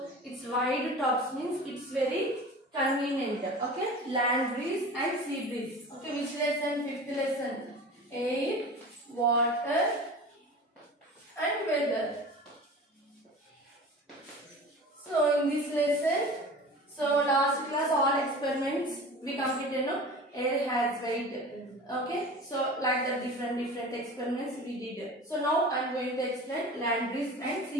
it's wide tubs means it's very convenient. Okay, land breeze and sea breeze. Okay, which lesson? 5th lesson. Air, water and weather. So in this lesson, so last class all experiments we completed. No, air has weight. Okay, so like the different experiments we did. So now I am going to explain land breeze and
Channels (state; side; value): normal; both; correlation 0.37